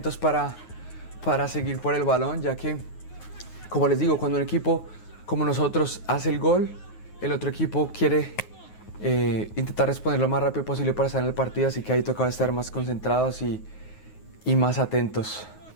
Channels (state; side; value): late; right; 9.4 ms